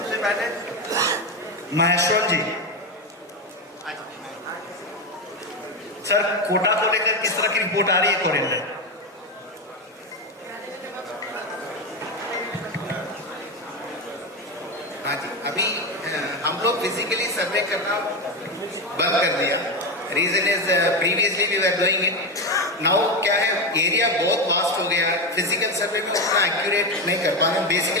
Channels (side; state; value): both; normal; correlation 0.13